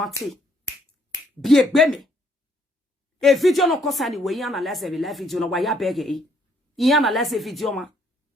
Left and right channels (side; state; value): both; normal; correlation 0.68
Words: Bi egbe me. E video no kosa ni we analyze every live video no wa ya bege e. I analyze video ma.